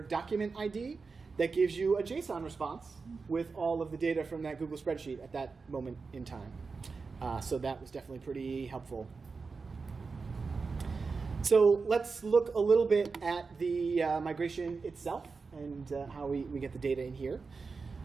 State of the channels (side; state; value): left; quieter; 4.6 dB